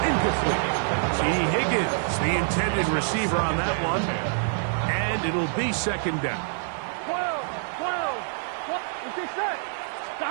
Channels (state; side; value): silent; left; 59 dB below the other